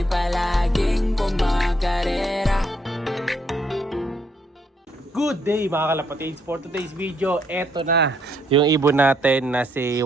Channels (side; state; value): both; normal; correlation 0.72